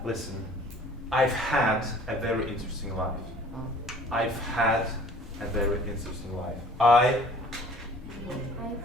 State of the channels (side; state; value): both; normal; correlation 0.50